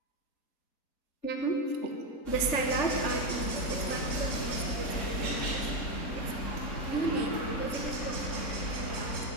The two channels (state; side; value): late; right; 3.4 ms